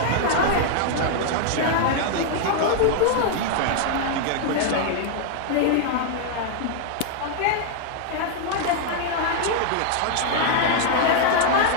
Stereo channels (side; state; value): both; different; correlation 0.00